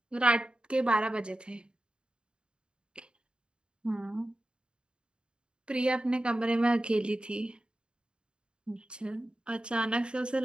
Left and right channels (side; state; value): left; late; 0.052 ms